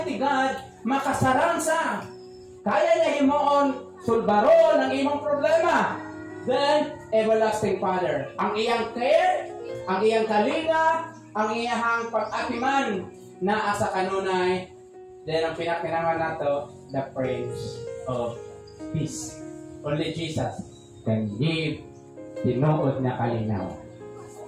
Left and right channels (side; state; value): both; identical; correlation 1.00